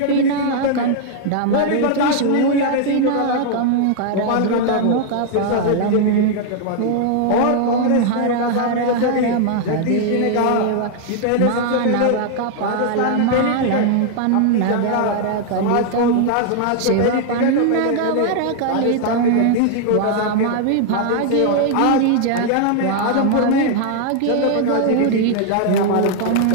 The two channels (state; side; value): different; both; correlation 0.00